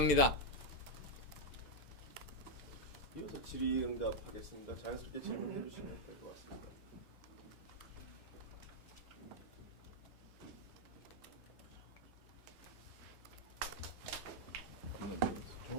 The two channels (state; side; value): normal; both; correlation 0.01